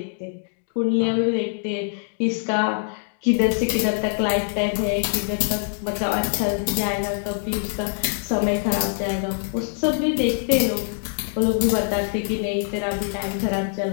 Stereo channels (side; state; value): right; silent; digital silence